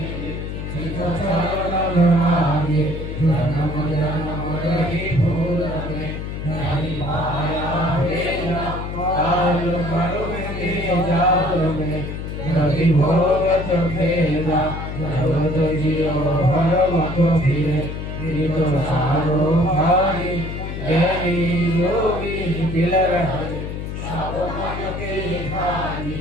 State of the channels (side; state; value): left; noise; hum, 6 dB below the sound